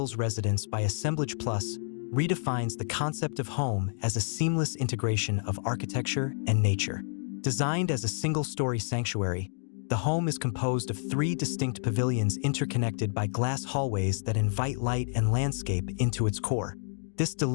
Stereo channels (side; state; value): right; silent; digital silence